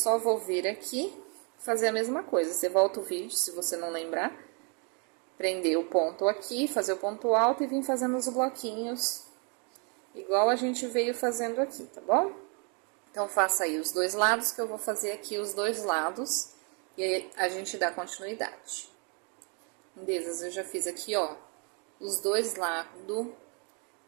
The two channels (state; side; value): quieter; left; 36.3 dB